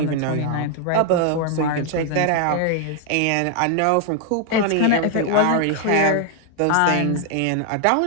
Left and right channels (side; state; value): both; different; correlation 0.00